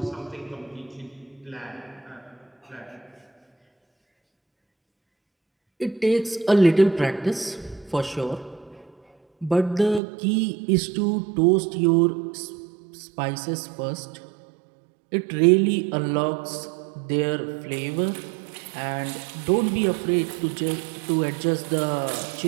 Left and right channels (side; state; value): left; drops out; at 10.0 s